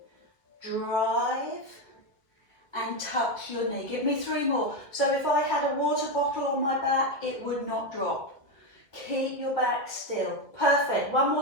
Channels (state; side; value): late; right; 1.6 ms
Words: Drive and touch your knee. Give me 3 more. So if I had a water bottle on my back, it would not drop. Keep your back still. Perfect. One